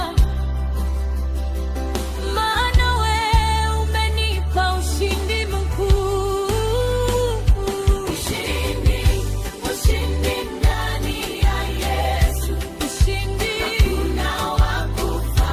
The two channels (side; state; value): both; identical; correlation 1.00